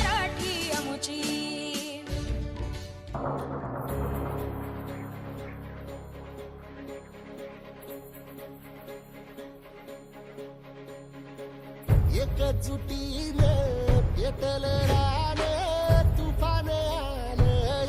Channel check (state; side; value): identical; both; correlation 1.00